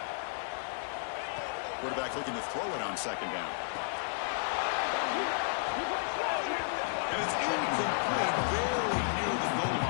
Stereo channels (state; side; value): silent; right; 56 dB below the other